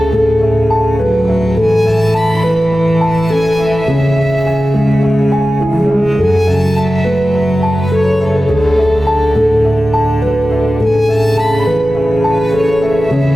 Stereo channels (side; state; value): left; noise; rumble, 19 dB below the sound